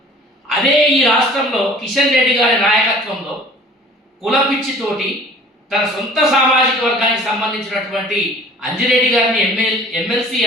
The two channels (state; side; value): normal; both; correlation 0.48